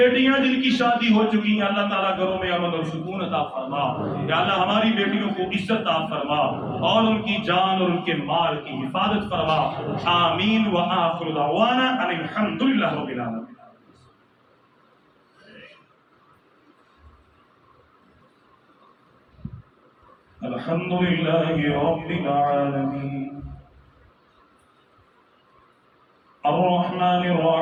جن کی شادی ہو چکی ہیں اللہ تعالیٰ گھروں میں امن اور سکون عطا فرما۔ یا اللہ ہماری بیٹیوں کو عزت عطا فرما اور ان کی جان اور ان کے مال کی حفاظت فرما۔ آمین وآخر دعوانا ان الحمد للہ رب العالمین۔ الحمد لله رب العالمين الرحمن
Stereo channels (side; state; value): both; identical; correlation 1.00